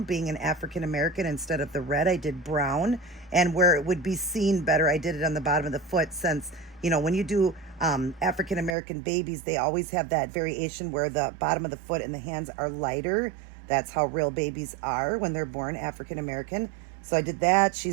Being an African American, instead of the red, I did brown. And where it would be seen better, I did it on the bottom of the foot, since, you know, when you do African American babies, they always have that variation where the bottom of the foot and the hands are lighter. That's how real babies are when they're born African American. So I did that.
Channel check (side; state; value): left; drops out; at 8.8 s